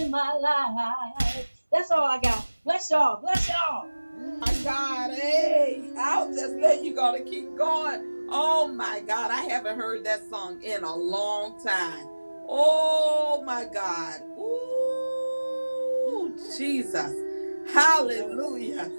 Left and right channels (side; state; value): both; inverted; correlation -1.00